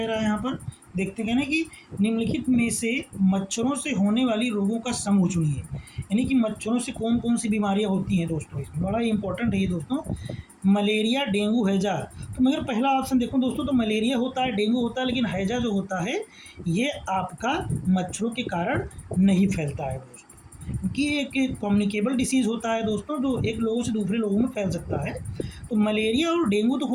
रहा है यहाँ पर? देखते हैं ना कि निम्नलिखित में से मच्छरों से होने वाली रोगों का समूह चुनिए, यानी कि मच्छरों से कौन कौन सी बीमारियां होती हैं दोस्तों। इसमें बड़ा ही इंपॉर्टेंट है ये दोस्तों, मलेरिया, डेंगू, हैजा। तो मगर पहला ऑप्शन देखो दोस्तों, तो मलेरिया होता है, डेंगू होता है, लेकिन हैजा जो होता है ये आपका मच्छरों के कारण नहीं फैलता है दोस्तों, क्योंकि एक कम्युनिकेबल डिसीज़ होता है दोस्तों, जो एक लोगों से दूसरे लोगों में फैल सकता है। तो मलेरिया और डेंगू तो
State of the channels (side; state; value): both; identical; correlation 1.00